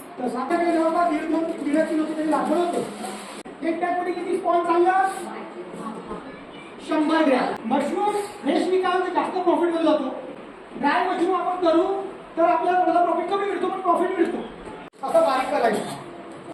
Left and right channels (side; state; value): both; identical; correlation 1.00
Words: तर साधारण जवळपास 1.5 किलो तरी लागवड होते. एक बॅग मध्ये किती स्पॉन चाललं? 100 ग्रॅम. मशरूम फ्रेश विकाल तर जास्त प्रॉफिट मध्ये जातो. ड्राय मशरूम आपण करू तर आपल्याला थोडा प्रॉफिट कमी मिळतो, पण प्रॉफिट मिळतो. असं बारीक करायचं,